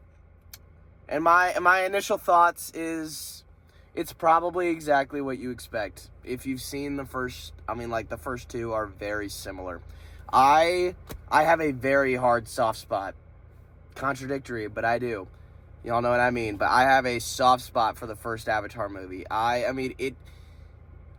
my initial thoughts is it's probably exactly what you expect. If you've seen the first two are very similar. I have a very hard soft spot. Contradictory, but I do. Y'all know what I mean. But I have a soft spot for the first Avatar movie.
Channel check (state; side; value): identical; both; correlation 1.00